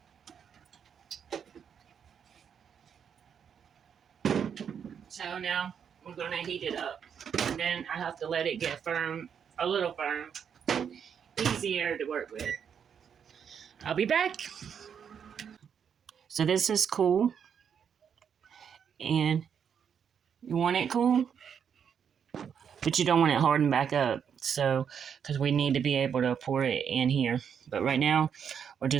So now we're going to heat it up. And then I have to let it get firm, a little firm. Easier to work with. I'll be back. So this is cool. And you want it cool, but you don't want it hardened back up. So, because we need to be able to pour it in here. But right now, we're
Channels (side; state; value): left; quieter; 7.6 dB